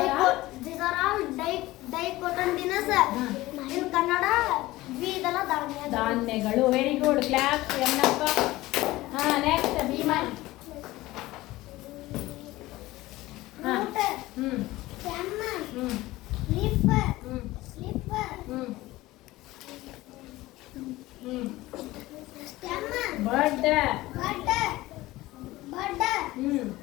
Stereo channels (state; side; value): quieter; right; 18.2 dB